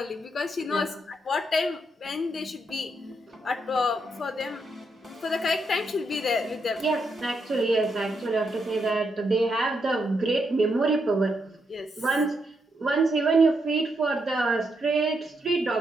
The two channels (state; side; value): normal; both; correlation 0.80